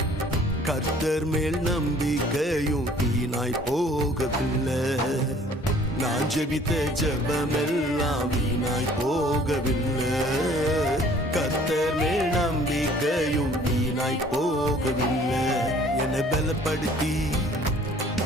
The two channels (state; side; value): normal; both; correlation 0.54